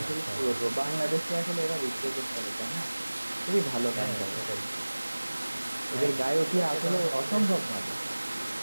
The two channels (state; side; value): inverted; both; correlation -1.00